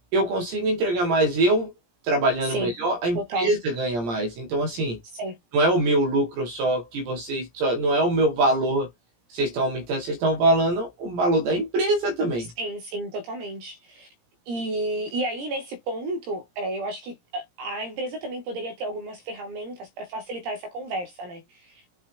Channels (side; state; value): left; late; 17 ms